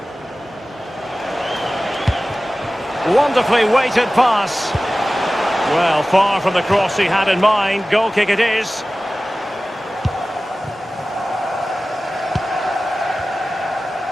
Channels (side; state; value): both; normal; correlation 0.96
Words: Wonderfully weighted pass. Well, far from the cross he had in mind. Goal kick it is.